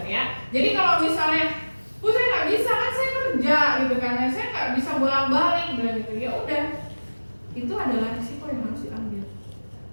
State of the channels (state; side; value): inverted; both; correlation -1.00